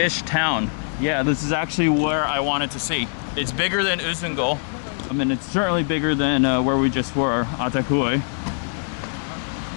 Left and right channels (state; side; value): silent; right; digital silence